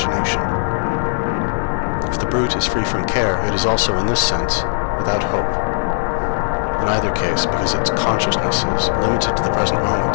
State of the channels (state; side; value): silent; right; 67 dB below the other